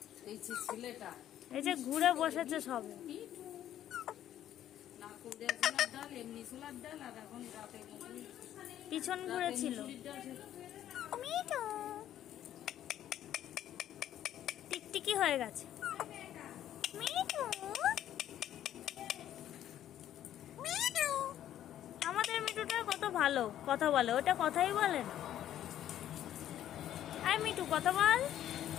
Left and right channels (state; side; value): quieter; right; 11.5 dB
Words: এই যে ছেলেটা, এই যে ঘুরে বসেছে সবে। না কুমড়া ছোলার ডাল, এমনি ছোলার ডাল, আর এখন রাতে পিছন ঘুরেছিল। মিঠু টিকটিকি হয়ে গেছে। মিঠু আমাদের মিঠুটা কত ভালো কথা বলে, ওটা কথাই বলে না। আয় মিঠু কথা বল।